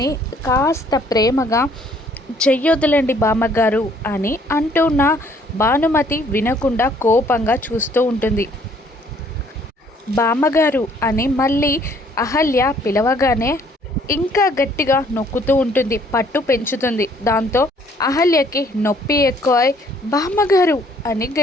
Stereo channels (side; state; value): both; normal; correlation 0.62